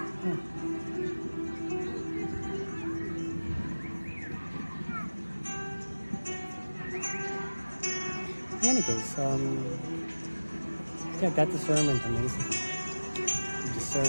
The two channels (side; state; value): both; inverted; correlation -1.00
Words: In any case, that discernment amazes me.